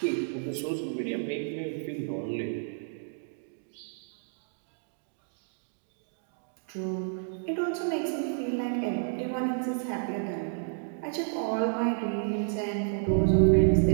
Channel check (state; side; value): silent; left; digital silence